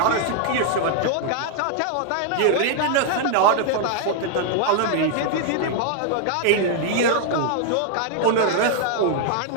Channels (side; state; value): both; different; correlation 0.00